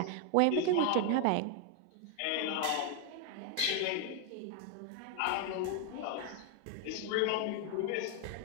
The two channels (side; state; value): both; different; correlation 0.00